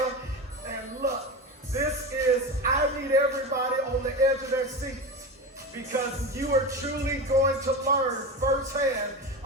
And look, this is, I need everybody on the edge of their seats, because you are truly going to learn firsthand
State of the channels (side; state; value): both; normal; correlation 0.23